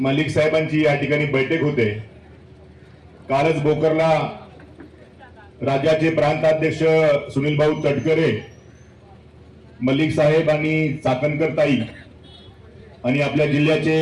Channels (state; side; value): identical; both; correlation 1.00